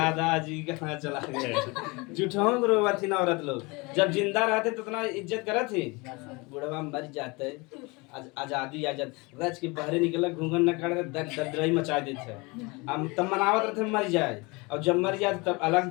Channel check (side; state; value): right; quieter; 26.4 dB